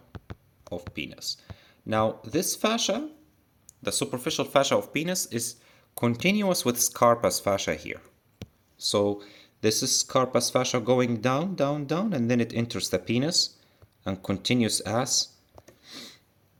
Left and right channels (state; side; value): identical; both; correlation 1.00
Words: of penis. Now, this fascia, the superficial fascia of penis, is continuous with Scarpa's fascia here. So this is Scarpa's fascia going down, and then it enters the penis and continues as